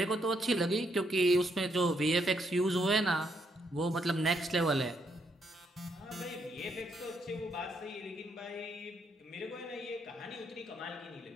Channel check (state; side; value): normal; both; correlation 0.75